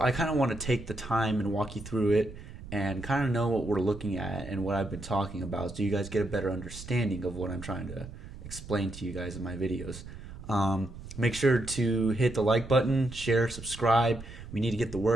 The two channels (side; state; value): right; noise; rumble, 13 dB below the sound